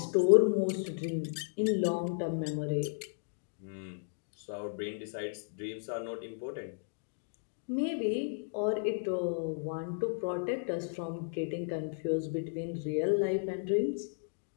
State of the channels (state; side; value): silent; right; digital silence